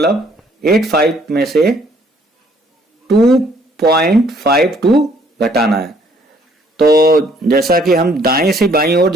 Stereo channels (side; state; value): both; normal; correlation 0.63